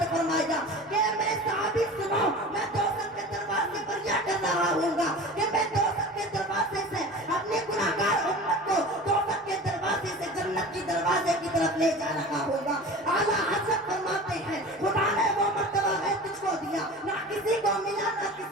فرمایا کہ میرے صحابی سنو میں دوزخ کے دروازے پر کیا کر رہا ہوں گا کہ میں دوزخ کے دروازے سے اپنے گنہگار امت کو دوزخ کے دروازے سے جنت کی دروازے کی طرف لے جا رہا ہوں گا. اعلیٰ حضرت فرماتے ہیں خدا نے وہ مرتبہ ہے تجھ کو دیا نہ کسی کو ملا نہ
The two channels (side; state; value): both; normal; correlation 0.36